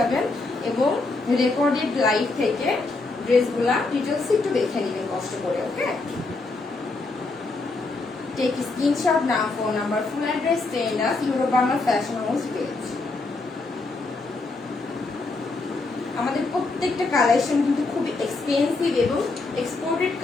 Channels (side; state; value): right; quieter; 3.5 dB